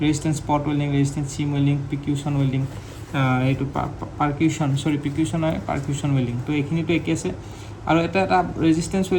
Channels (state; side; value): identical; both; correlation 1.00